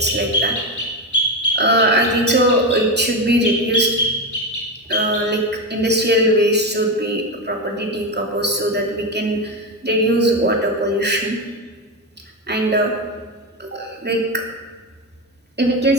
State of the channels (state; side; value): normal; both; correlation 0.14